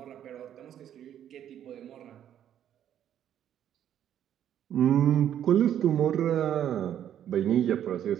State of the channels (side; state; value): left; quieter; 10.3 dB